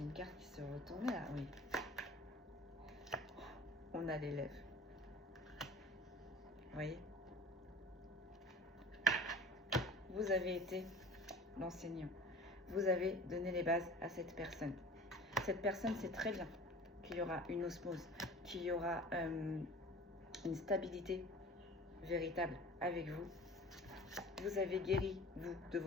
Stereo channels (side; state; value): both; normal; correlation 0.42